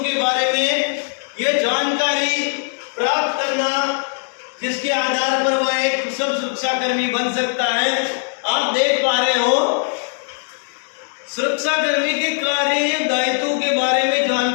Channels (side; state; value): right; silent; 64 dB below the other